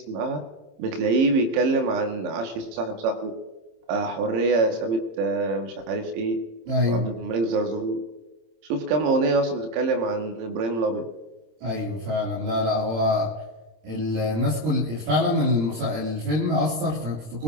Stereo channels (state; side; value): late; left; 26 ms